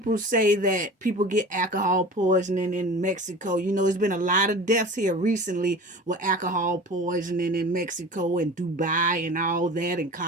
say that people get alcohol poisoning in Mexico. You know, there's been a lot of deaths here recently with alcohol poisoning in Mexico and Dubai and all that, and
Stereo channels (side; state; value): both; normal; correlation 0.37